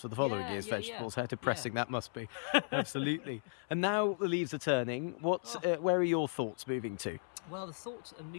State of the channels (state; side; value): silent; right; 54 dB below the other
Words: for the following year's vegetables. How depressing that must be. Absolutely. And now the leaves are turning. Where are your thoughts moving to? Well, the thoughts are